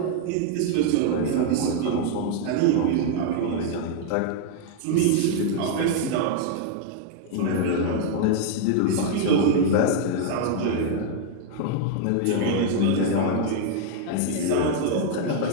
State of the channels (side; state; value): both; different; correlation 0.00